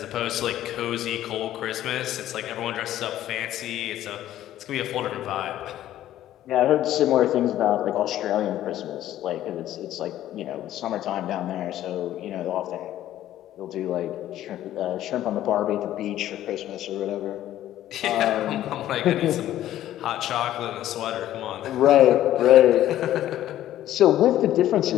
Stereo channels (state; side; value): quieter; right; 12.9 dB